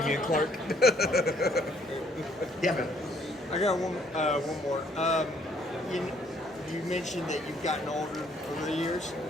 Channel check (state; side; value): normal; both; correlation 0.65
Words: Clark. Yeah, man. I got one more. You mentioned that you've gotten older over the years,